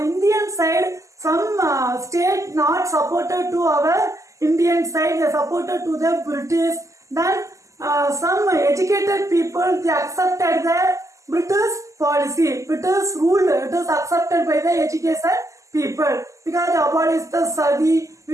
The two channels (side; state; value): left; late; 0.16 ms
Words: side, some state not supported to our Indian side. They supported to the British. Then some educated people, they accepted the British policy. British rule, it is accepted by the educated people because they abolished the sati,